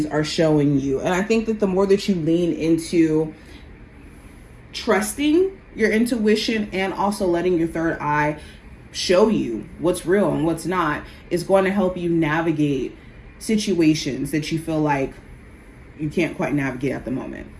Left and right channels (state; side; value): identical; both; correlation 1.00